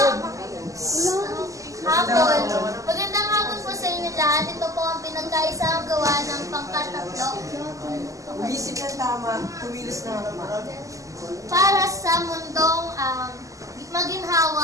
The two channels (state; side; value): late; left; 0.16 ms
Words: hapon. Magandang hapon po sa inyo lahat. Ito po ang pinagkaisang gawa ng pangkatatlo. Umisip ng tama, kumilos ng akma. Para sa mundong